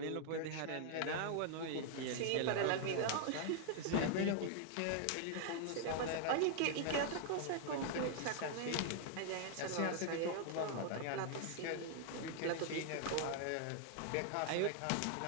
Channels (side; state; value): both; different; correlation 0.00